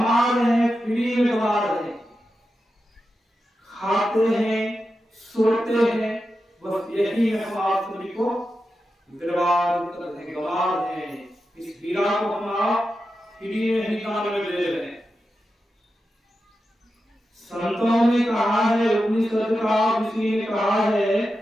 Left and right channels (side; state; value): both; normal; correlation 0.90